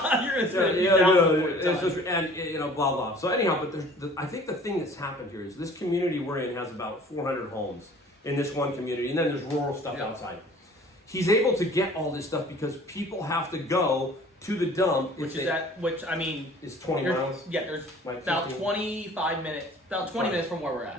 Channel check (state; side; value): normal; both; correlation 0.49